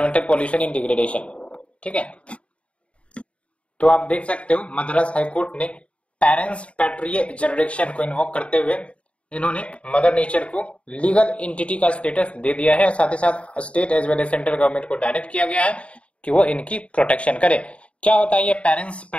pollution in degradation. ठीक है, तो आप देख सकते हो मद्रास हाईकोर्ट ने पेरेंट्स पैट्रिये जुरिडिक्शन को इन्वोक करते हुए इन्होंने मदर नेचर को लीगल एंटिटी का स्टेटस दे दिया है। साथ ही साथ state as well as central government को डायरेक्ट किया गया है कि वो इनकी प्रोटेक्शन करे। क्या होता है ये पेरेंट्स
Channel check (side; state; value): right; late; 0.062 ms